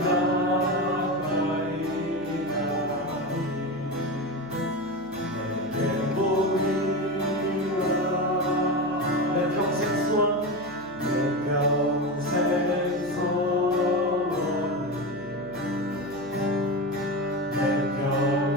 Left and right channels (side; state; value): right; noise; hum, 22 dB below the sound